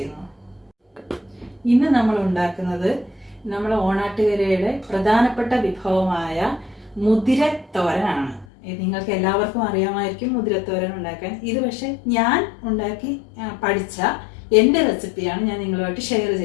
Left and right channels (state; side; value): drops out; right; at 8.5 s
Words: ഇന്ന് നമ്മൾ ഉണ്ടാക്കുന്നത് നമ്മൾ ഓണാട്ടുകരയുടെ പ്രധാനപ്പെട്ട വിഭവമായ മുതിരത്തോരനാണ്. നിങ്ങൾക്ക് എല്ലാവർക്കും അറിയാമായിരിക്കും മുതിരത്തോരൻ ഉണ്ടാക്കാൻ. ഇത് പക്ഷെ ഞാൻ ഉണ്ടാക്കി പഠിച്ച എൻ്റെ റെസിപ്പിയാണ് ഞാൻ നിങ്ങളുമായിട്ട് ഷെയർ